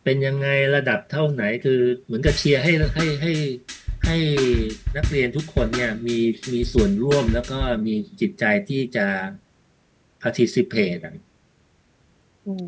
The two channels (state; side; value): identical; both; correlation 1.00